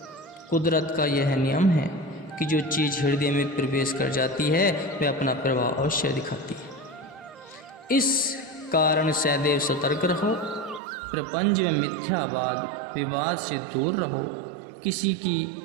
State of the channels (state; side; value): drops out; left; at 10.8 s